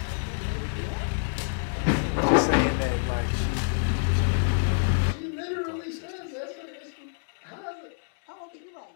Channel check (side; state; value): right; silent; digital silence